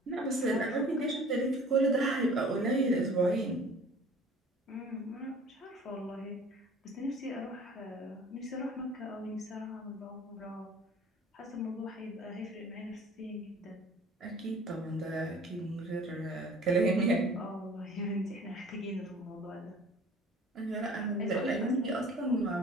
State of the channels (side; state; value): both; normal; correlation 0.48